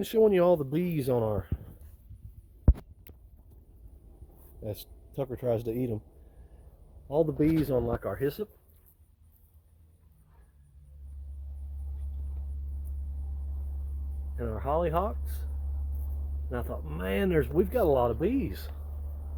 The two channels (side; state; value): both; identical; correlation 1.00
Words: showing you all the bees on our, as Tucker tries to eat them, all the bees on like our hyssop. And our hollyhocks. And I thought, man, we've got a lot of bees.